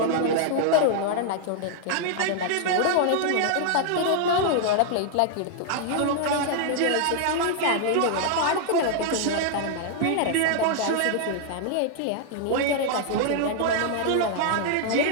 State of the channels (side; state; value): both; different; correlation -0.01